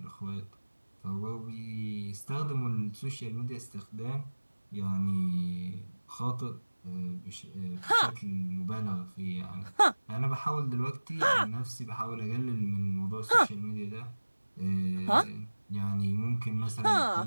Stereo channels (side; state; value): both; inverted; correlation -1.00